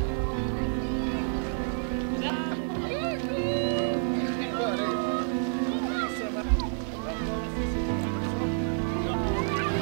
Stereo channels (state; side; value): silent; left; digital silence